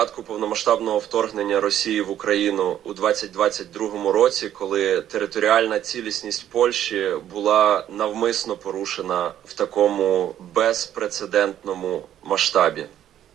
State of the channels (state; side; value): quieter; left; 11.2 dB